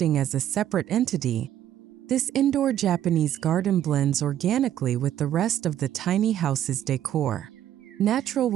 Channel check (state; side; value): quieter; left; 11.4 dB